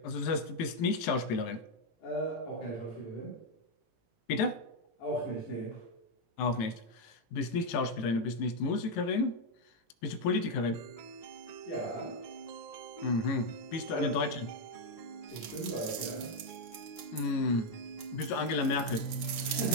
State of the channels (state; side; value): late; right; 18 ms